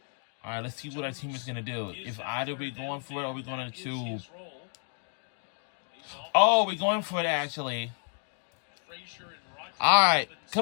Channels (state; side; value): silent; right; 56 dB below the other